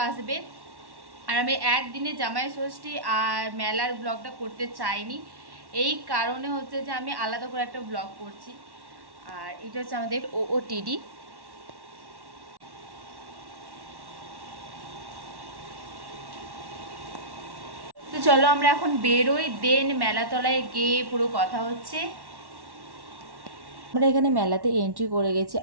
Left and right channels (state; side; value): late; left; 1.1 ms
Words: আসবে। আর আমি একদিনে জামাই ষষ্ঠী আর মেলার ব্লগটা করতে চাইনি, এই কারণে হচ্ছে যে আমি আলাদা করে একটা ব্লগ করছি। আর এটা হচ্ছে আমাদের OOTD। তো চলো আমরা এখন বেরোই, দেন মেলাতলায় গিয়ে পুরো কথা হচ্ছে। আমরা এখানে মেলাতে এন্ট্রি করে গেছি,